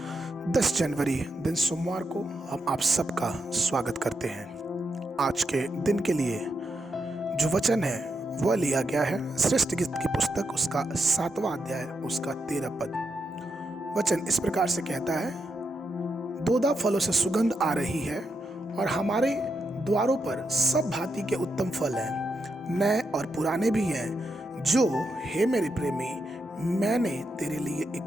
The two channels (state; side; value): normal; both; correlation 0.84